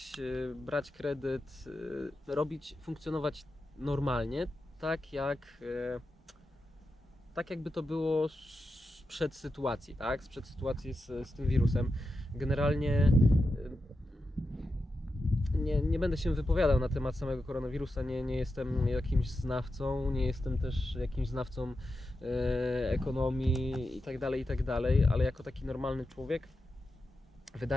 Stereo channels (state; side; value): normal; both; correlation 0.89